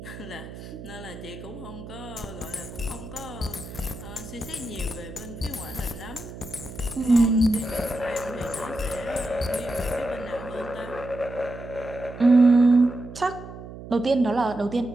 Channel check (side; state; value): right; noise; hum, 13 dB below the sound